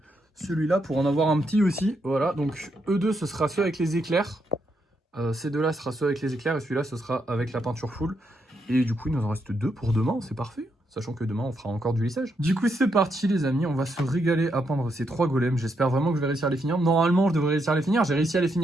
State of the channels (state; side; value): normal; both; correlation 0.79